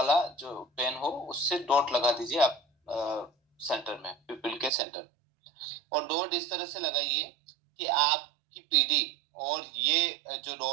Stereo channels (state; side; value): drops out; left; at 4.7 s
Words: जो पेन हो उससे डॉट लगा दीजिए आप सेंटर में, पिपिल के सेंटर। और डॉट इस तरह से लगाइए कि आपकी पीडी और ये जो